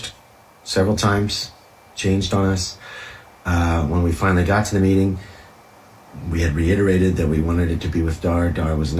several times, changed on us. When we finally got to the meeting, we had reiterated that we wanted it to be with Dhar. Dhar was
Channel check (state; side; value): identical; both; correlation 1.00